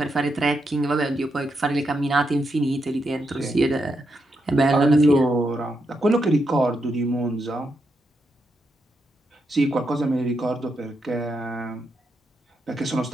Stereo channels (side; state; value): both; normal; correlation 0.83